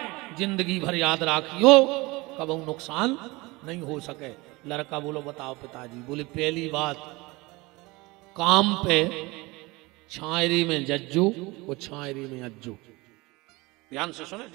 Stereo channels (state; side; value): quieter; left; 23.1 dB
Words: जिंदगी भर याद राखियो, कभी नुकसान नहीं हो सके। लड़का बोलो बताओ पिताजी। बोले पहली बात, काम पे छायरी में जज्जो और छायरी में अज्जो। ध्यान से सुने